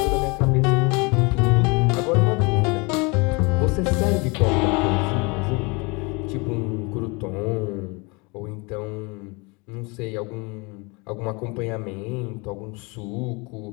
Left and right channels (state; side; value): quieter; right; 28.3 dB